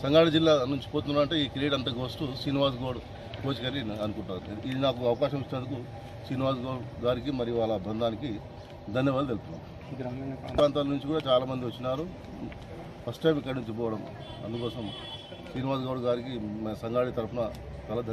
సంగారెడ్డి జిల్లా నుంచి పోతున్నారంటే ఈ క్రీడ అంతా గోస్ట్ శ్రీనివాస్ గౌడ్ కోచ్ గారి అనుకుంటారు. ఇది నాకు అవకాశం ఇచ్చినందుకు శ్రీనివాస్ గౌడ్ గారికి మరియు వాళ్ళ బృందానికి ధన్యవాదాలు తెలుపుతున్నాం. ప్రాంతాల నుంచి కూడా చాలామంది వచ్చినారు, ఫస్ట్ టైం ఇక్కడి నుంచి పోవడం. అందుకోసం శ్రీనివాస్ గౌడ్ గారికి సంగారెడ్డి తరఫున చాలా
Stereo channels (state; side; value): identical; both; correlation 1.00